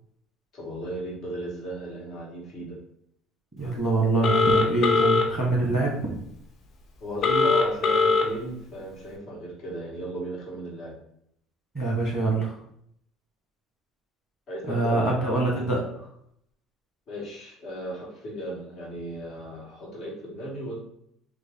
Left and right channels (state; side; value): normal; both; correlation 0.63